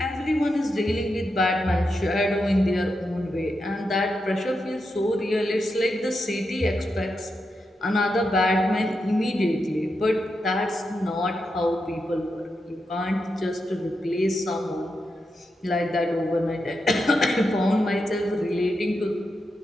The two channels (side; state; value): both; normal; correlation 0.86